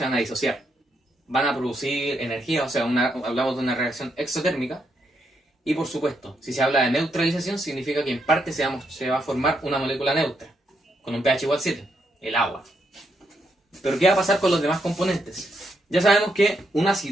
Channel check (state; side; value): normal; both; correlation 0.79